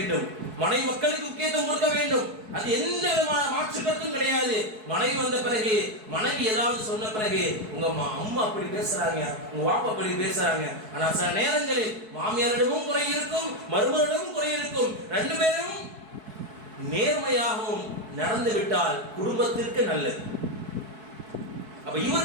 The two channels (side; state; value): left; late; 4.6 ms